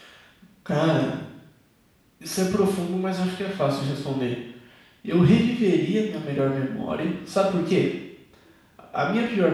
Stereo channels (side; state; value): both; identical; correlation 1.00